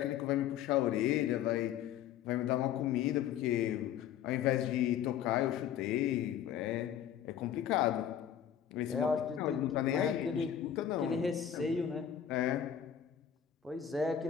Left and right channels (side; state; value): right; quieter; 9.6 dB